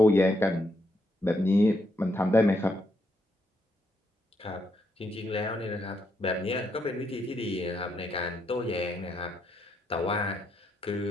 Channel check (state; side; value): normal; both; correlation 0.78